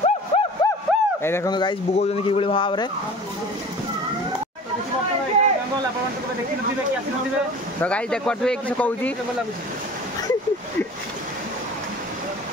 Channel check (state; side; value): normal; both; correlation 0.41